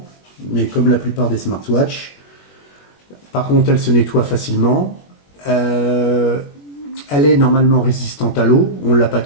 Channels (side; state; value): right; late; 21 ms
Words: mais comme la plupart des smartwatches. Par contre, elle se nettoie facilement. Elle est normalement résistante à l'eau, on ne l'a pas